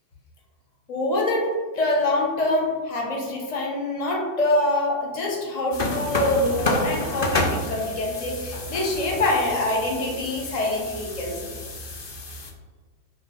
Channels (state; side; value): late; left; 2.5 ms